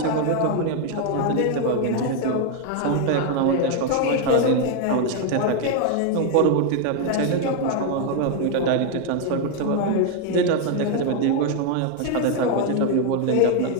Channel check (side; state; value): both; different; correlation 0.01